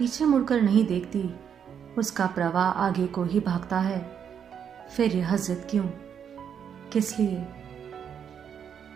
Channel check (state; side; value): quieter; left; 8.0 dB